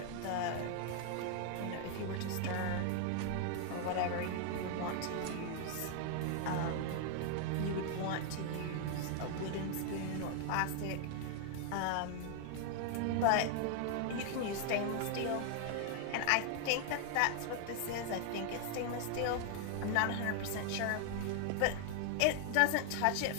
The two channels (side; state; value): both; different; correlation 0.00